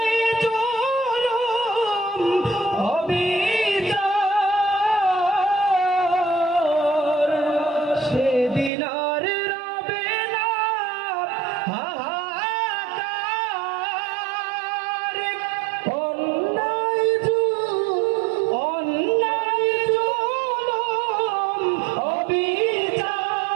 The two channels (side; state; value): left; drops out; at 8.7 s